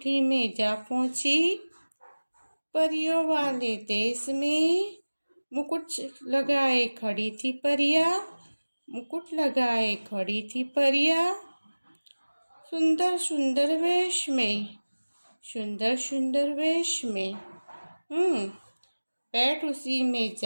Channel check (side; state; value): both; inverted; correlation -1.00